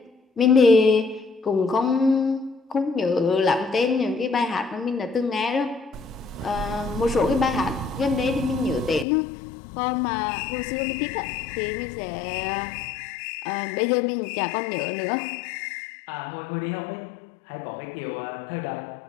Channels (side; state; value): right; drops out; at 9.1 s